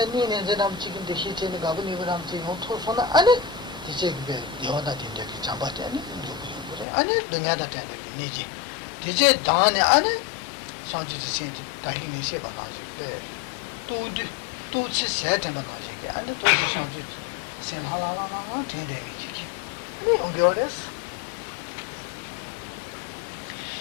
제가 지금도 시체는 가분이 그럼 지금 토소나 아니 이제 그게 여다 된데 잡았대 아니 그래 아니 등야다 된데 니지 이제 다네 아니 상지 진짜 다니는 시 봐가지고 tout ce c'est un bagage et à tout changer c'est la mais on regarde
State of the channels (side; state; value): right; drops out; at 6.9 s